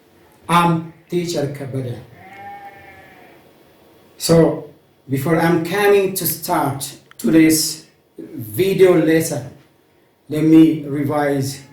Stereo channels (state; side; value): identical; both; correlation 1.00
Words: I'm teacher Kabada. So before I'm coming to start today's video lesson, let me revise